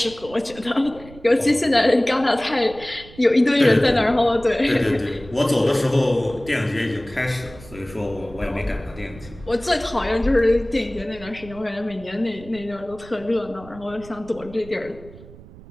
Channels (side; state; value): right; noise; rumble, 19 dB below the sound